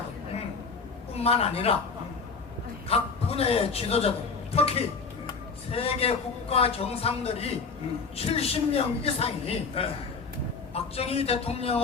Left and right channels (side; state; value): right; quieter; 4.8 dB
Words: 뿐만 아니라 각 분야의 지도자들, 특히 세계 국가 정상들이 70명 이상이 네. 박정희